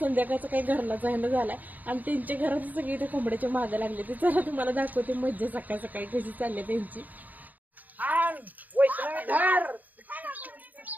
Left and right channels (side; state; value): left; late; 0.082 ms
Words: संध्याकाळचा काही घरला जायला झालाय आणि त्यांच्या घरात सगळी त्या कोंबड्याच्या मागे लागले. ते चला तुम्हाला दाखवते मज्जा सकाळ सकाळी कशी चालली त्यांची.